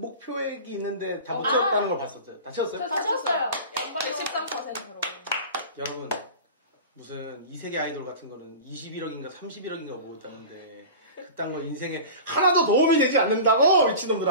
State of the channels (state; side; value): inverted; both; correlation -0.34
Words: 있는데 다 못 채웠다는 걸 봤었죠. 다 채웠어요? 다 채웠어요. 양방이 13%로. 여러분 무슨 이세계 아이돌 같은 거는 21억인가 31억인가 모였다는데 그딴 거 인생에 하나도 도움이 되지 않는다고